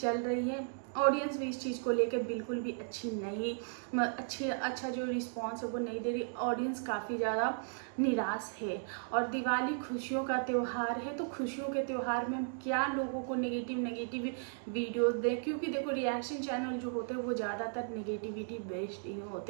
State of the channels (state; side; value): silent; left; digital silence